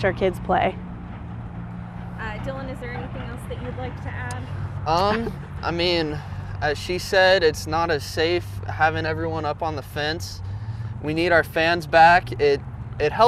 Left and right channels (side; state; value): both; identical; correlation 1.00